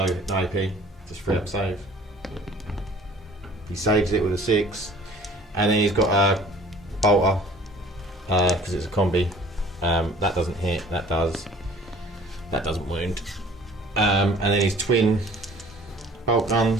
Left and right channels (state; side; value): normal; both; correlation 0.51